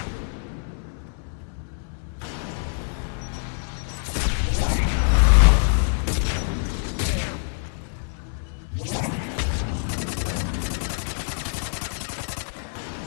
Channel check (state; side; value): silent; right; digital silence